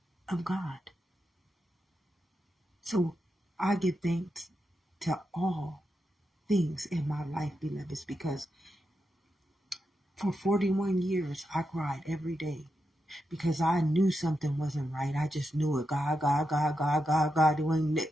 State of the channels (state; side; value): normal; both; correlation 0.86